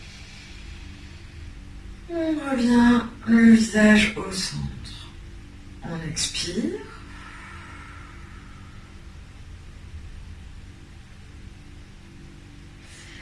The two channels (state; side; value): identical; both; correlation 1.00